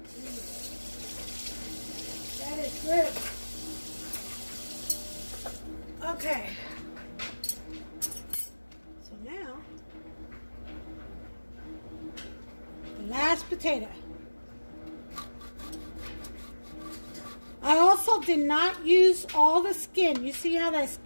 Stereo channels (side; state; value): both; inverted; correlation -1.00